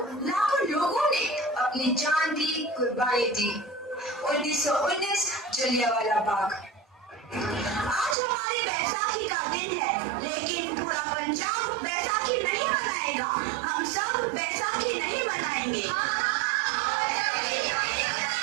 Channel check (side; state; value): left; drops out; at 8.2 s